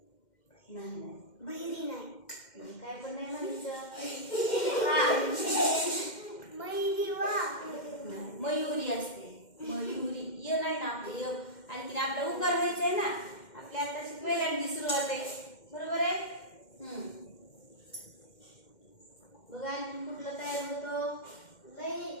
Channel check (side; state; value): right; late; 2.1 ms